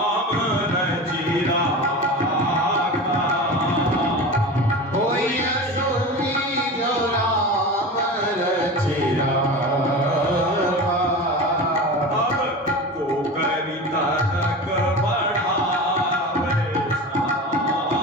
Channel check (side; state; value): both; normal; correlation 0.30